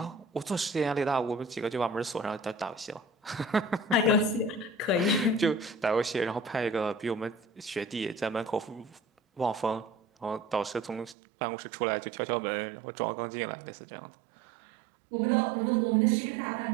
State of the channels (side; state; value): left; drops out; at 11.2 s